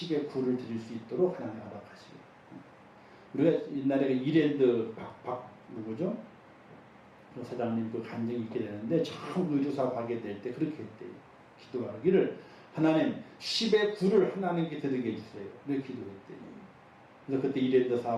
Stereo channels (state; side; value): identical; both; correlation 1.00